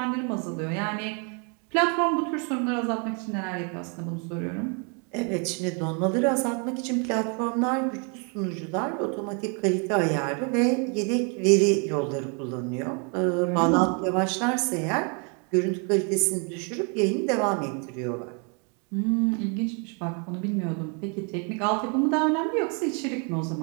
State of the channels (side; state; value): left; quieter; 36.8 dB